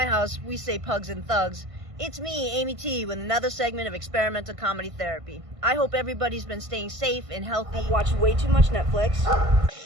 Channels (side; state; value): left; late; 1.5 ms